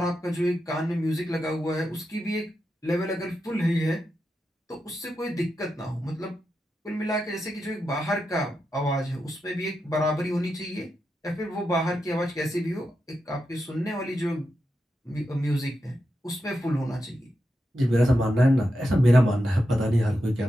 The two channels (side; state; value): both; normal; correlation 0.87